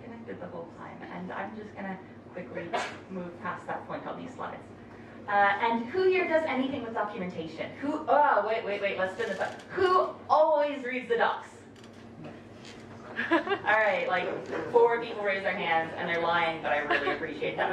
connected the whole time, and I'm just gonna quickly move past that point on these slides. And who here does anything with documentation? Who, oh, wait, let's spin this up. Who always reads the docs? All right, like 4 people raise their hands, and they're lying, but I really appreciate that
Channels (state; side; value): identical; both; correlation 1.00